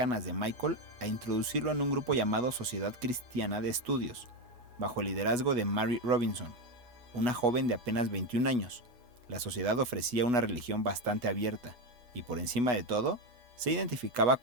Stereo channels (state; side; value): late; left; 8.2 ms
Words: de Michael, a introducirlo en un grupo llamado Sociedad Cristiana de Estudios, bajo el liderazgo de Mary Robinson, una joven de apenas 21 años. La sociedad ofrecía una religión bastante abierta y, por encima de todo, se identificaba